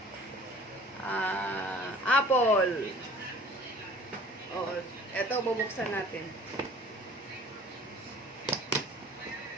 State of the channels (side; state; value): both; normal; correlation 0.49